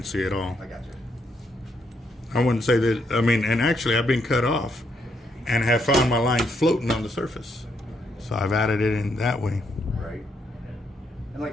at all. I got you. I wouldn't say that. I mean, and actually, I've been cut off and have found my line floating on the surface. So I've added it in that way. Right. And like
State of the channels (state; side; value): normal; both; correlation 0.76